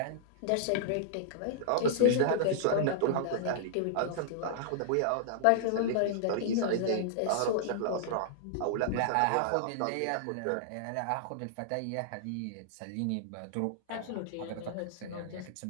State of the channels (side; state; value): both; different; correlation -0.01